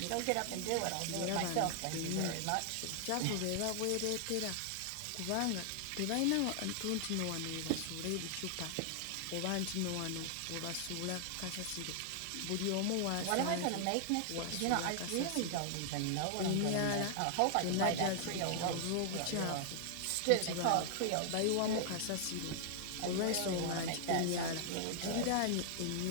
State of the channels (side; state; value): both; different; correlation -0.01